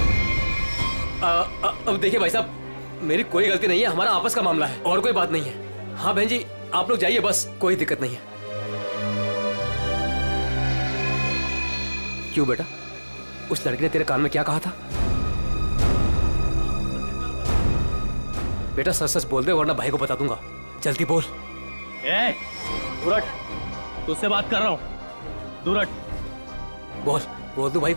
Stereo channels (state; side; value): inverted; both; correlation -1.00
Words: अब देखिए भाई साहब, मेरी कोई गलती नहीं है, हमारा आपस का मामला है और कोई बात नहीं है। हाँ बहन जी, आप लोग जाइए बस, कोई दिक्कत नहीं है। क्यों बेटा, उस लड़की ने तेरे कान में क्या कहा था? बेटा सच सच बोल दे वरना भाई को बता दूंगा। जल्दी बोल। दूर हट, तुझसे बात कर रहा हूँ। दूर हट। बोल बोल दो भाई